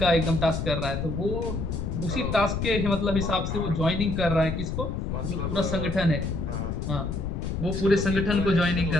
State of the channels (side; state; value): left; noise; rumble, 3 dB below the sound